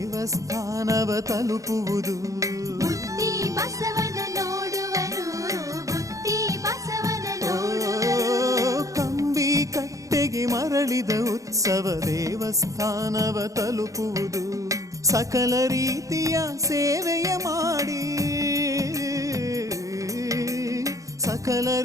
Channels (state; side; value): late; left; 0.16 ms